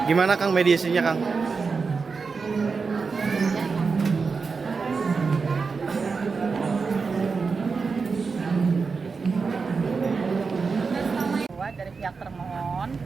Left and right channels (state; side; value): quieter; left; 4.8 dB